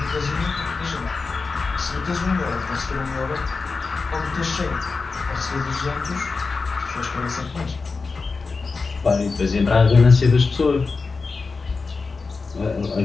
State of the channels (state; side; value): quieter; right; 4.3 dB